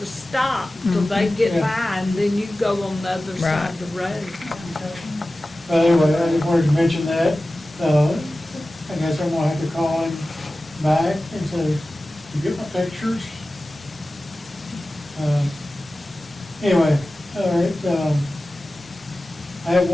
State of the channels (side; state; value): both; normal; correlation 0.96